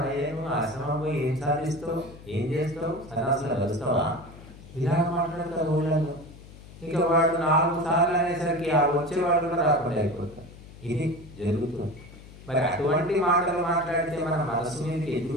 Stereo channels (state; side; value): noise; left; hum, 18 dB below the sound